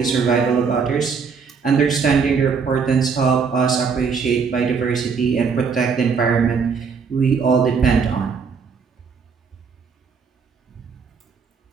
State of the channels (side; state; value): left; quieter; 5.7 dB